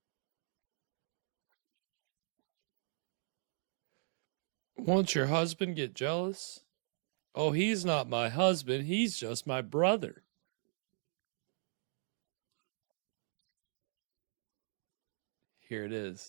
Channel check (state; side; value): silent; left; digital silence